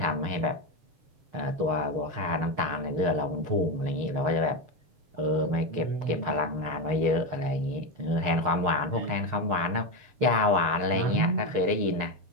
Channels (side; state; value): left; late; 6.6 ms